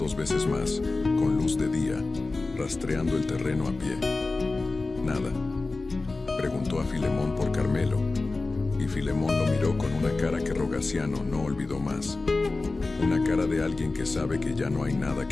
veces más, con luz de día, rastreando el terreno a pie. Nada. Preguntó a Filemón por Carmelo, y Filemón lo miró con una cara que Rogaciano no olvidó más. Una cara de alguien que sabe que ya no hay nada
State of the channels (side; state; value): right; quieter; 3.5 dB